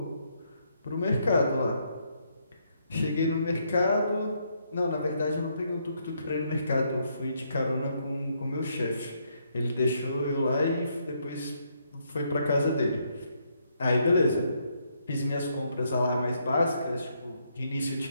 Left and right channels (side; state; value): both; inverted; correlation -0.75